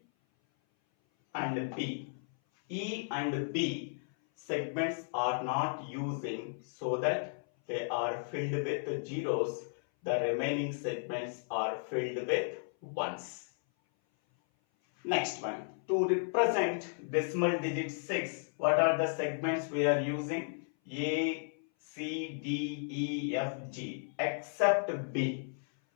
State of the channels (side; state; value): right; silent; 55 dB below the other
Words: and B. E and B segments are not using, so that they are filled with zeros. The remaining segments are filled with ones. Next one. To represent decimal digit 6, what are the segments we are using? A, C, D, E, F, G, except B.